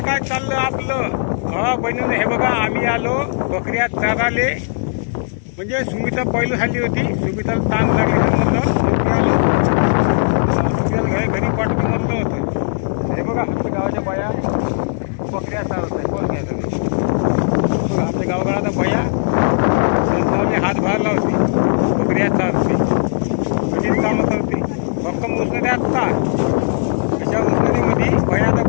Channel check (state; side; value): silent; right; digital silence